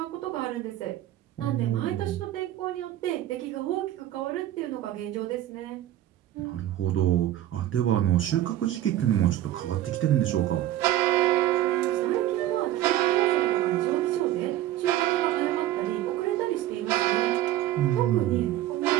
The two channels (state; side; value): quieter; left; 13.5 dB